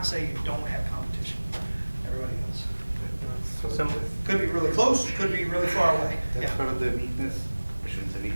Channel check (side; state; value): both; inverted; correlation -1.00